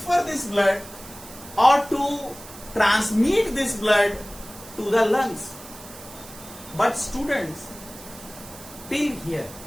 this blood or to transmit this blood to the lungs. But students, till here,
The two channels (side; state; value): right; noise; hiss, 17 dB below the sound